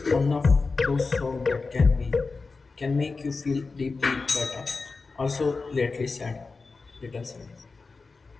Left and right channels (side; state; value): right; quieter; 4.1 dB